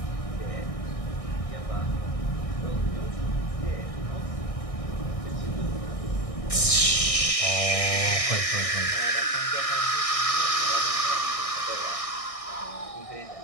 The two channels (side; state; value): right; late; 1.6 ms